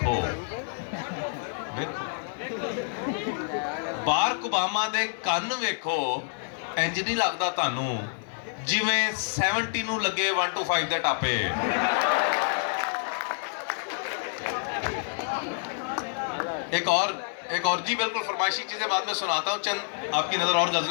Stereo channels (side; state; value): right; silent; digital silence